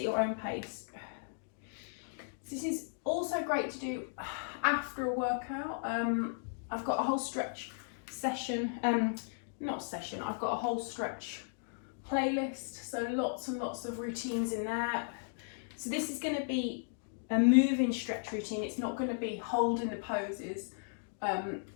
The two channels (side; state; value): right; silent; digital silence